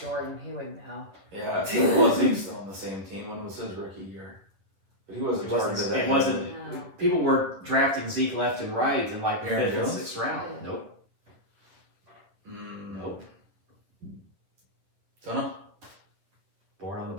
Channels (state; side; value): late; left; 10 ms